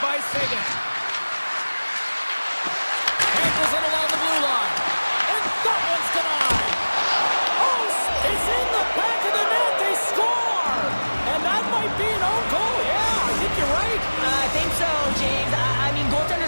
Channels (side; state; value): both; inverted; correlation -1.00